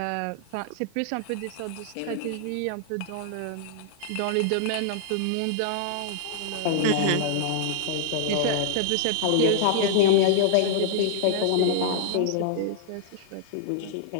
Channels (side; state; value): both; different; correlation -0.01